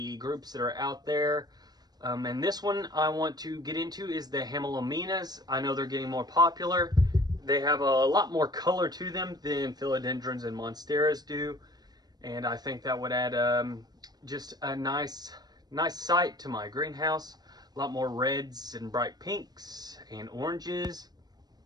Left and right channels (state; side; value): late; left; 0.19 ms